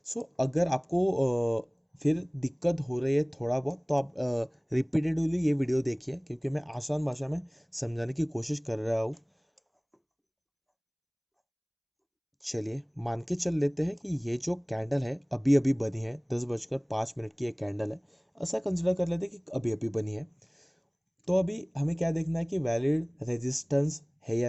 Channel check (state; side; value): identical; both; correlation 1.00